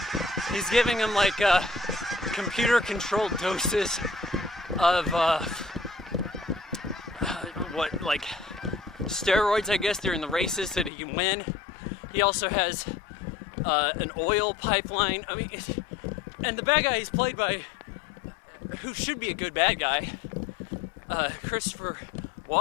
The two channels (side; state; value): right; drops out; at 10.9 s